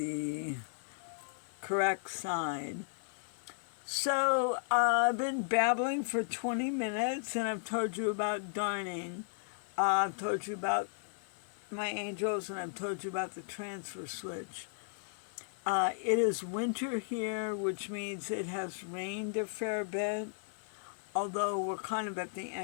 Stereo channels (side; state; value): right; silent; 54 dB below the other